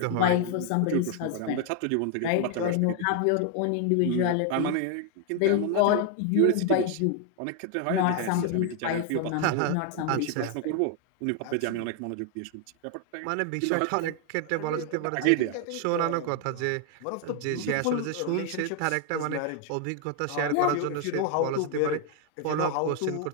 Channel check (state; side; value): different; both; correlation 0.00